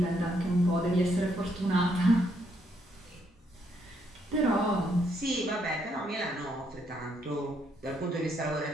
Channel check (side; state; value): both; normal; correlation 0.74